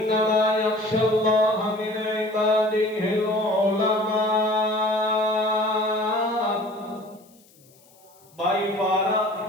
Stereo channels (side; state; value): left; noise; hiss, 29 dB below the sound